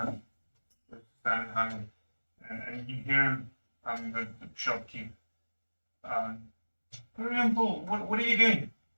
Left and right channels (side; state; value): both; inverted; correlation -1.00